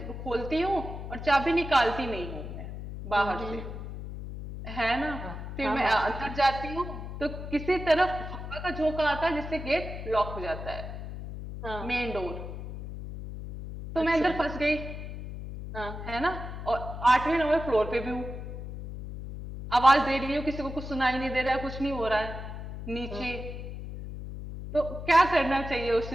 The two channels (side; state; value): left; noise; hum, 8 dB below the sound